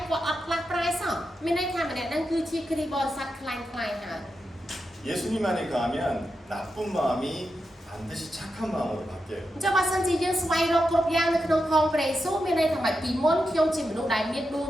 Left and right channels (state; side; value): normal; both; correlation 0.88